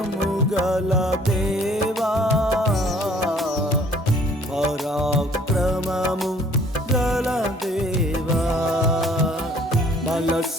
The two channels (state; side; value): normal; both; correlation 0.58